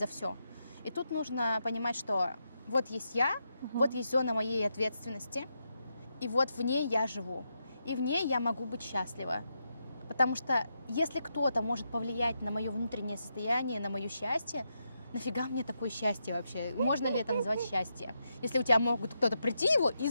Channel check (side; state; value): both; inverted; correlation -0.84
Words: все. И тут нужно понимать, что вот есть я, вот есть зона моей ответственности, и вот в ней я живу. И в ней я могу быть счастлива. Потому что если кто-то может повлиять на мое внутреннее состояние, на мое счастье, нафига мне такое счастье вообще? Можно ли это назвать счастье? Если у тебя могут кто-то прийти его и